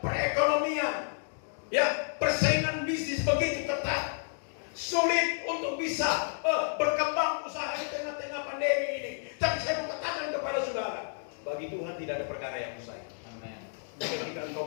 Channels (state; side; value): silent; right; digital silence